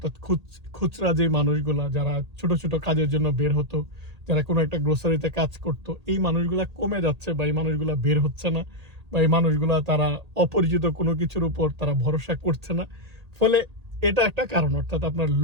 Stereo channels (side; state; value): left; late; 1.8 ms